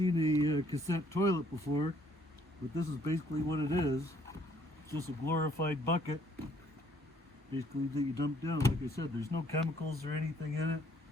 a cassette toilet before, but this is basically what it is. It's just a glorified bucket, basically, that you dump down. Like I said, there's no chemicals or anything in it.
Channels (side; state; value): both; normal; correlation 0.64